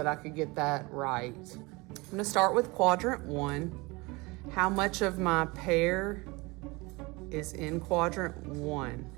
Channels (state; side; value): quieter; left; 24.6 dB